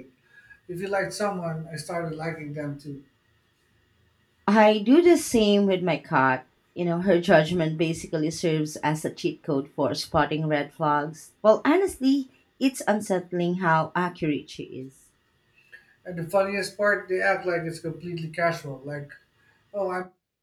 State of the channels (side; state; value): both; identical; correlation 1.00